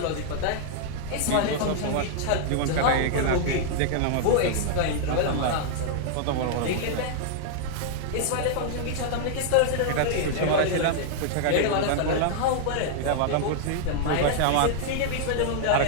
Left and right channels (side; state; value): both; different; correlation -0.01